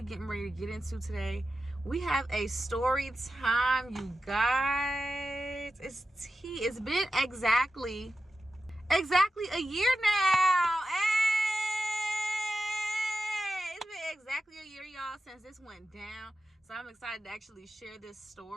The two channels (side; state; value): both; normal; correlation 0.91